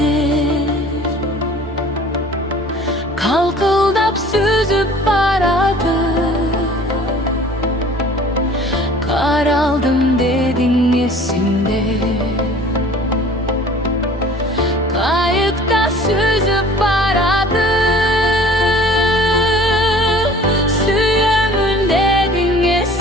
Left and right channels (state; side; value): normal; both; correlation 0.48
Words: kalkıldap süzüp baradı. Kar aldım dedin esimde, kayıkta süzüp baradı. Suyumun dedin